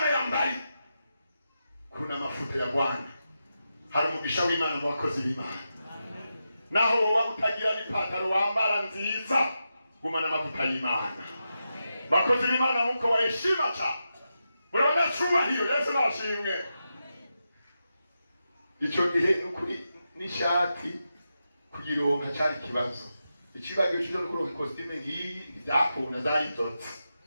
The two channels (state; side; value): inverted; both; correlation -0.88